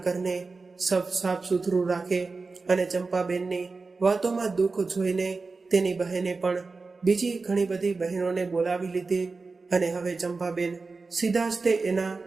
ઘરને સાફ સુથરું રાખે. અને ચંપાબેનની વાતોમાં દુઃખ જોઈને તેની બહેને પણ બીજી ઘણી બધી બહેનોને બોલાવી લીધી. અને હવે ચંપાબેન સીધા જ તે એના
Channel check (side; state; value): left; quieter; 4.0 dB